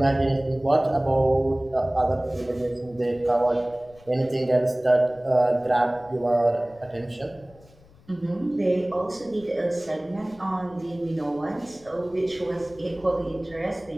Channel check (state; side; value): noise; left; rumble, 26 dB below the sound